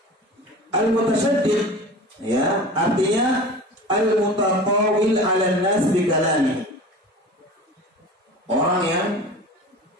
Al mutasyaddiq ya, artinya al mutatawil 'ala nas bi kalami. Orang yang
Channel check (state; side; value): normal; both; correlation 0.36